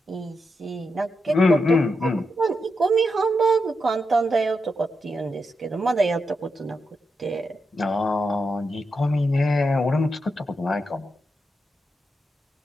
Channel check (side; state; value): both; normal; correlation 0.85